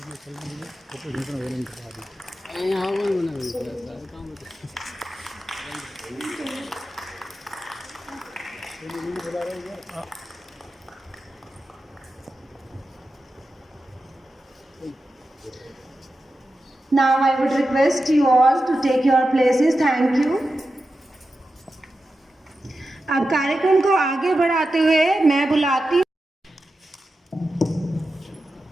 Now I would request you all to take your places. Thank you. अब कार्यक्रम को आगे बढ़ाते हुए मैं बुलाती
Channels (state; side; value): normal; both; correlation 0.91